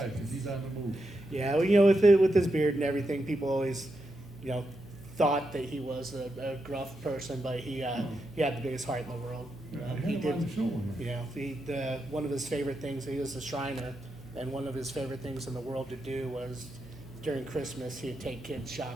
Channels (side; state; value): left; noise; hum, 24 dB below the sound